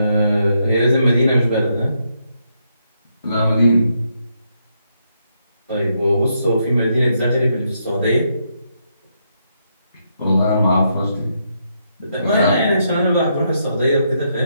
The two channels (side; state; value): both; inverted; correlation -0.78